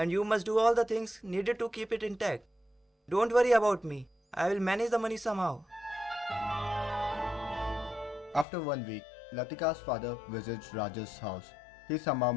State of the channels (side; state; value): right; drops out; at 8.5 s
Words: you must do all the things needed to keep it intact. Don't worry about me. I will manage the money somehow. After 1 week, Latika's father visits Raj's house. He somehow